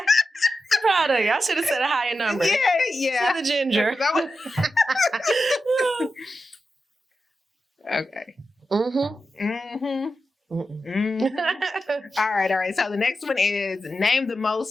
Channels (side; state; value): both; normal; correlation 0.90